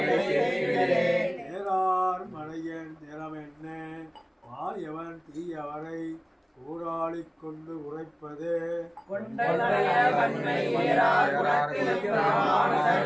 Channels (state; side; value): identical; both; correlation 1.00